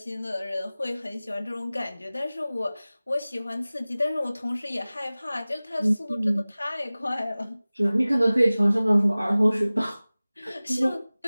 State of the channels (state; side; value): inverted; both; correlation -0.98